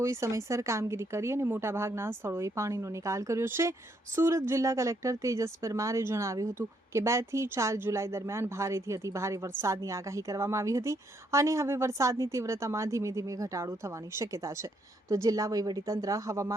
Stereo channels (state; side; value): normal; both; correlation 0.73